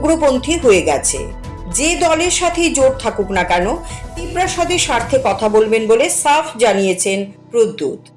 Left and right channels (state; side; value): identical; both; correlation 1.00